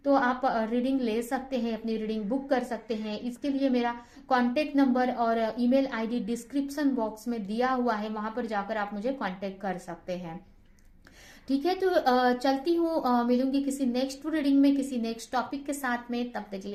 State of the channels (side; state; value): both; identical; correlation 1.00